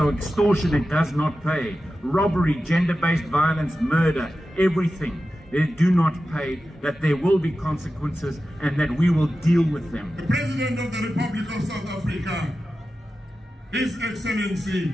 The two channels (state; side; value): normal; both; correlation 0.93